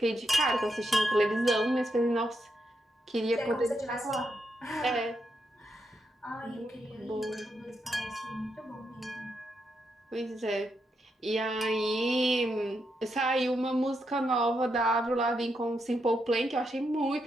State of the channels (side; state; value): both; normal; correlation 0.82